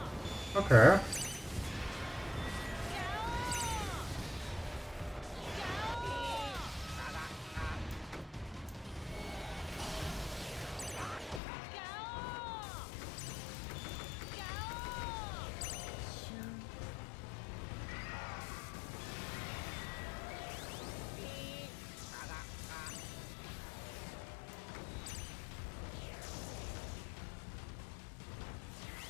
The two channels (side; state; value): right; drops out; at 11.4 s